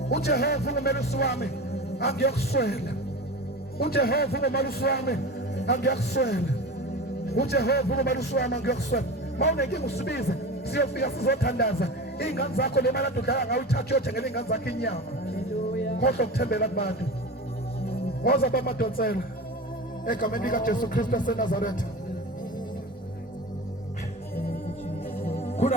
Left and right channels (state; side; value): normal; both; correlation 0.30